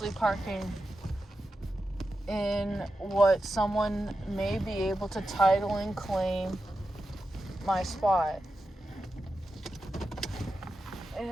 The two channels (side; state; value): both; normal; correlation 0.90